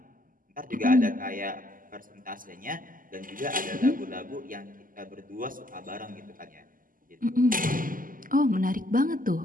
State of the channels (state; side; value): late; left; 0.41 ms